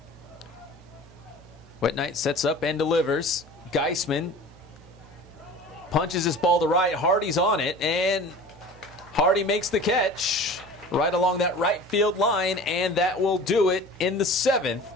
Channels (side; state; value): both; normal; correlation 0.40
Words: Wet Night sets up and delivers. Geisman punches this ball to right. Hardy's on it, and Hardy makes the catch right along that right field line, and that will do it in the 7th.